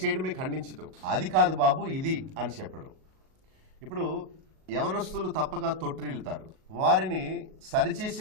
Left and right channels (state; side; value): late; left; 38 ms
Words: ఖండించటం, అది కాదు బాబు ఇది అని చెప్పడం. ఇప్పుడు యవనస్తులు తప్పక తొట్టిల్లుతారు, వారిని